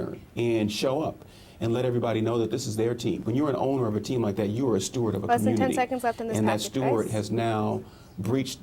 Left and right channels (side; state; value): both; identical; correlation 1.00